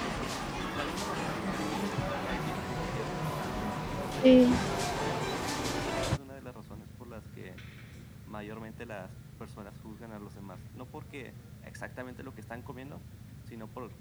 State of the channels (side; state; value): both; identical; correlation 1.00